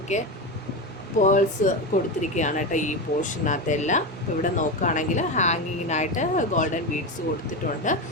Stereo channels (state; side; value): normal; both; correlation 0.18